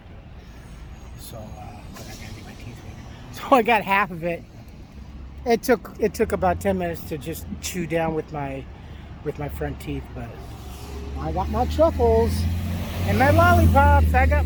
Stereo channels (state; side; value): identical; both; correlation 1.00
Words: So but I gotta get my teeth fixed. So I got half of it. It took about 10 minutes to just chew down with my front teeth, but I got my truffles and my lollipops. I got